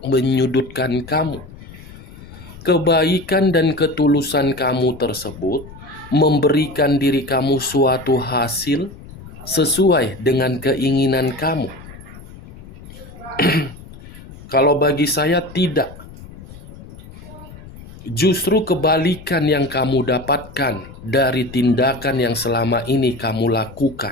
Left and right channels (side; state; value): left; noise; rumble, 17 dB below the sound